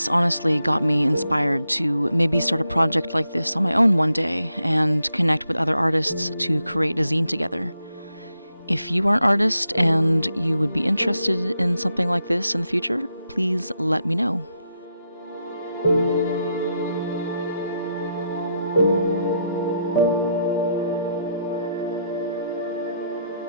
honestly got me inspired to maybe start a project like this on my own one day and connect with other artists to create a zine together. If you are an artist and you would be interested in something like this in the future, please let me know.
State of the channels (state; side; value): inverted; both; correlation -0.80